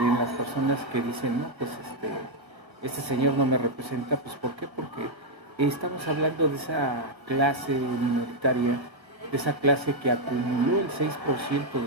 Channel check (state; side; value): late; left; 1.0 ms